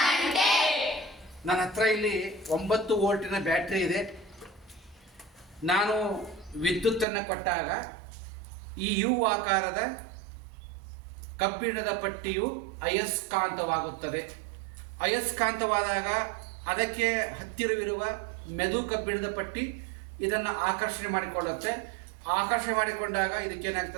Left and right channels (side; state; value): left; drops out; at 7.1 s